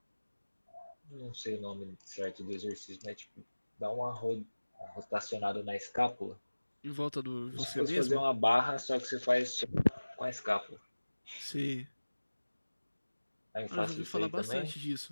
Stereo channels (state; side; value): inverted; both; correlation -1.00